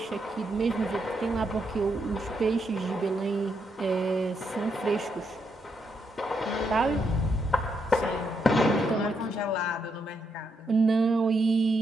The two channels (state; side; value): normal; both; correlation 0.79